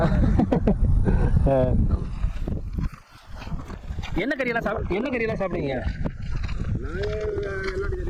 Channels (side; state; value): both; identical; correlation 1.00